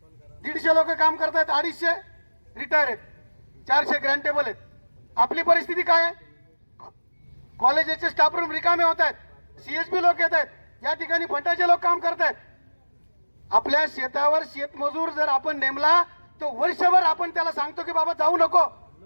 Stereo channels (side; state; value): both; inverted; correlation -1.00